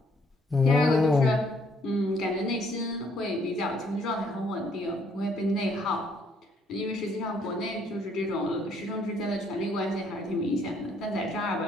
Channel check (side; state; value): both; normal; correlation 0.67